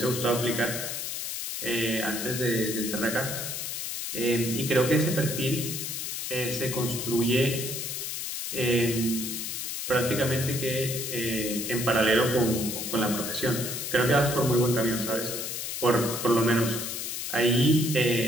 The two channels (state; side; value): noise; left; hiss, 4 dB below the sound